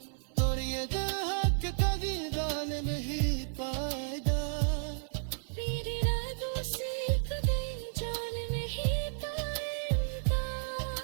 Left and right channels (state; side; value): silent; left; 56 dB below the other